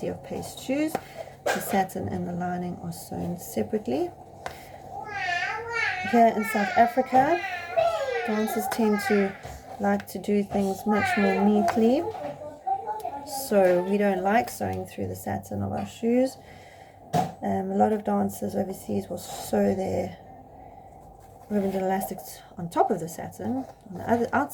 of paste shoes, the satin and the lining are sewn separately. Here in South Africa, dancers tend to like to do things much more neatly, so we don't like sewing through the satin of our shoes. A lot of dancers overseas will sew their ribbons and elastics on top of the satin on the other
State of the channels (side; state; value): both; identical; correlation 1.00